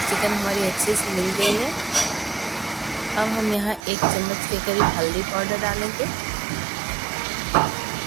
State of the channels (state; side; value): drops out; left; at 3.8 s